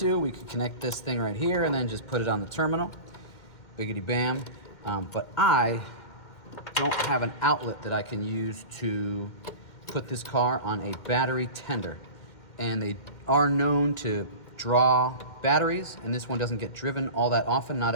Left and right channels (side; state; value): right; late; 2.1 ms